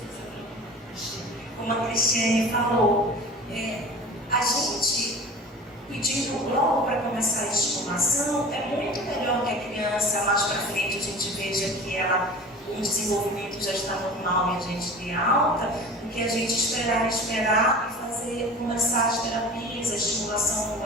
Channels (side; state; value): both; normal; correlation 0.38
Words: Como a Cristiane falou, a gente pedindo logo para começar a estimulação, é muito melhor que a criança mais para frente a gente veja que o desenvolvimento já está normal e a gente dê alta, do que a gente esperar e começar as terapias, a estimulação